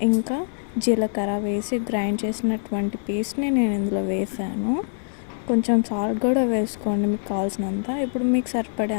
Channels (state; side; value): silent; right; 63 dB below the other